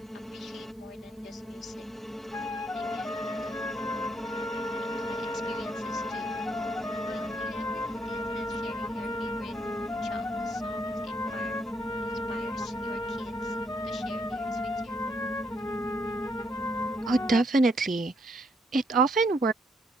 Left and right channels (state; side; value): normal; both; correlation 0.72